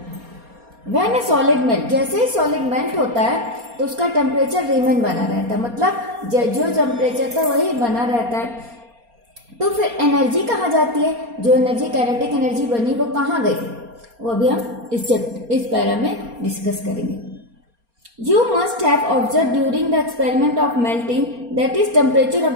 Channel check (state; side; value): late; left; 4.3 ms